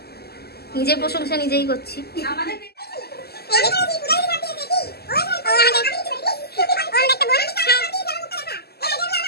নিজের প্রশংসা নিজেই করছি। আমাদের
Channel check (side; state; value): right; late; 0.46 ms